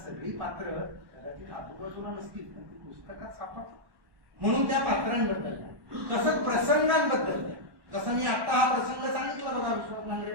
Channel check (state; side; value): late; left; 1.1 ms